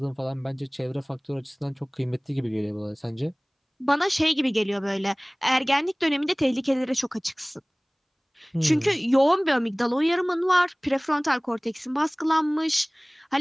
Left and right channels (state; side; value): identical; both; correlation 1.00